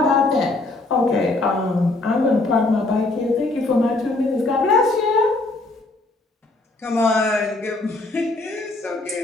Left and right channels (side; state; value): right; quieter; 3.0 dB